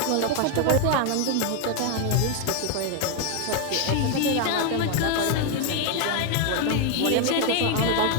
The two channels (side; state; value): both; different; correlation 0.01